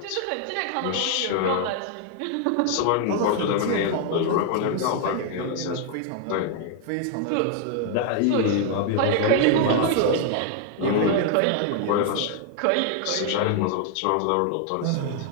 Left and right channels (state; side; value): different; both; correlation 0.00